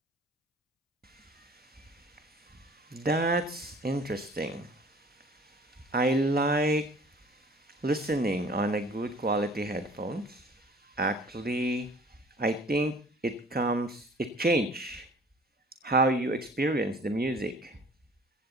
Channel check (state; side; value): normal; both; correlation 0.49